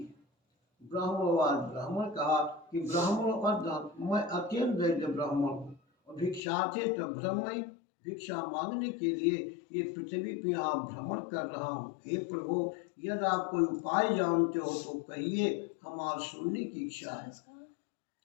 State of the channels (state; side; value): drops out; right; at 6.4 s